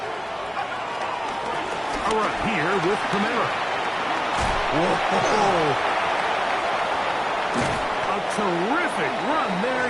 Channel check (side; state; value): both; identical; correlation 1.00